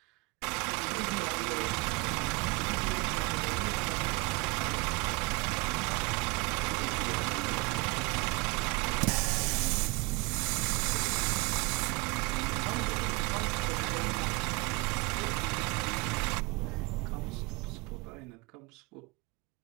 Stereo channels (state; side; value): quieter; left; 26.7 dB